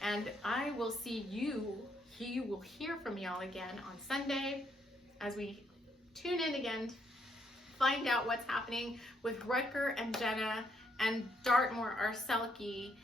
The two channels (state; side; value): normal; both; correlation 0.73